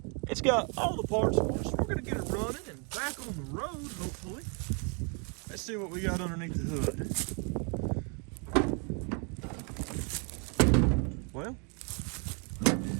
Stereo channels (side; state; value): left; quieter; 36.6 dB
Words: It's got all the parts for us. We're gonna get it running and back on the road, hopefully. Let's see what we got underneath the hood. Well,